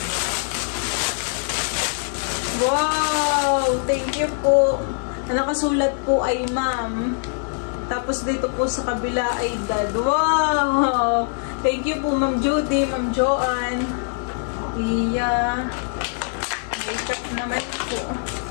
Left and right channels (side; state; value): right; silent; 64 dB below the other